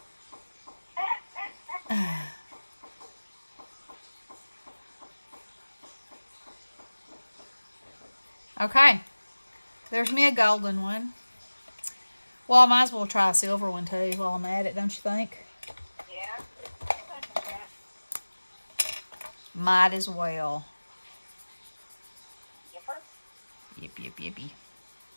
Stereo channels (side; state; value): both; inverted; correlation -1.00